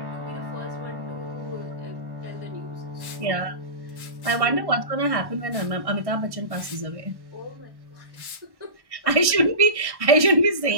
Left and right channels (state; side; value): late; left; 1.1 ms